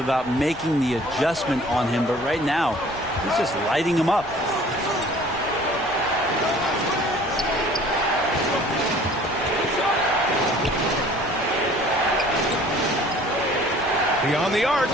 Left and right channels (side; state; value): left; noise; rumble, 20 dB below the sound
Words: making the adjustment on him, but right now, he's just lighting him up. Beyond the arc.